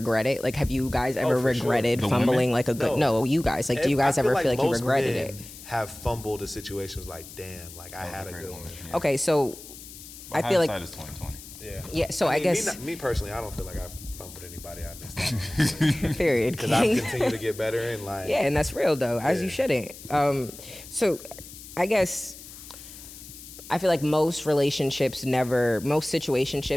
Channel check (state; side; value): noise; left; hiss, 16 dB below the sound